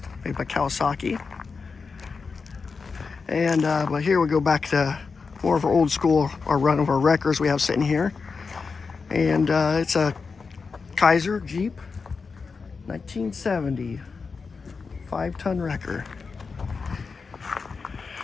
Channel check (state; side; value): quieter; right; 4.9 dB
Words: made by Kawasaki. And but here we go back to more of our old school, our run of our wreckers we have sitting here. And it's a Kaiser Jeep 1970 5-ton wrecker.